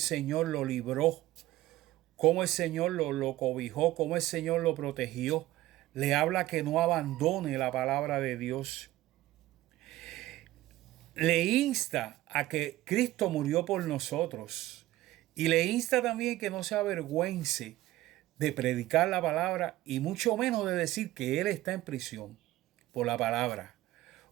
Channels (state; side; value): quieter; left; 16.1 dB